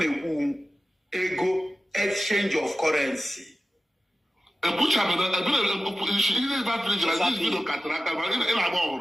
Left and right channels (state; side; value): normal; both; correlation 0.95